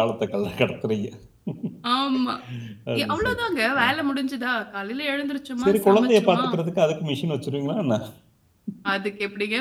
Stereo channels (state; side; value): identical; both; correlation 1.00